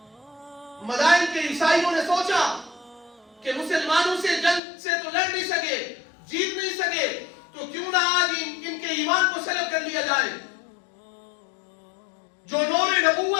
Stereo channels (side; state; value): right; drops out; at 4.6 s